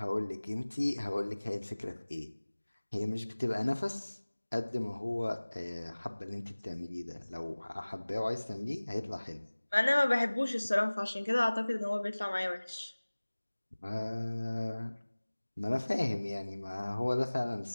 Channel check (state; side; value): inverted; both; correlation -1.00